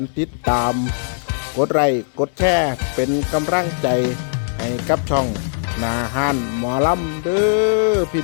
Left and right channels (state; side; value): silent; right; digital silence